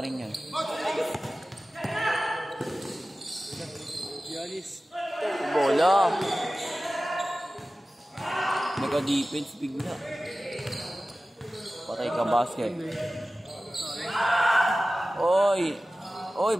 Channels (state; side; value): normal; both; correlation 0.96